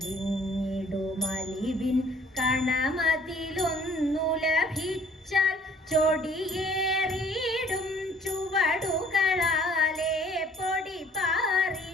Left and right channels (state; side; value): normal; both; correlation 0.57